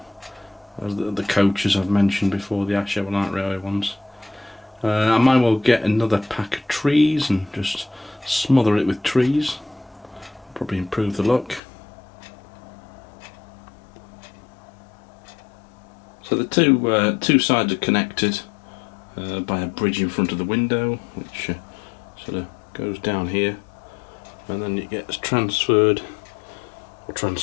As the coaches I've mentioned before, the Asher Light Railway ones. I might well get another pack of trees and just smother it with trees. Probably improve the look. So the two sides are connected by a bridge in front of the window, which sort of goes down here, and then it gets transferred or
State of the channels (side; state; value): right; drops out; at 11.6 s